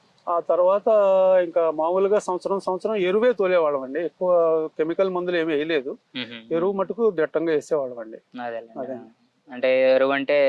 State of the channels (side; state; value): both; identical; correlation 1.00